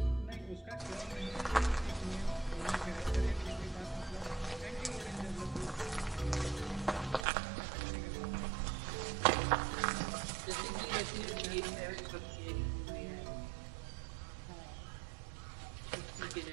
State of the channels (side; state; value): left; drops out; at 7.2 s